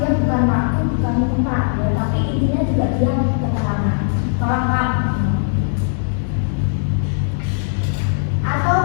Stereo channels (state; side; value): silent; right; digital silence